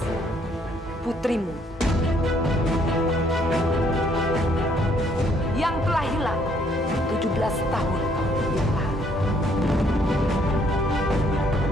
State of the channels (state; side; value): normal; both; correlation 0.66